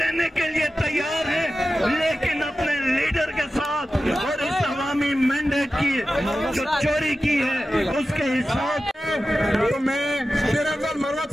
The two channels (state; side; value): normal; both; correlation 0.93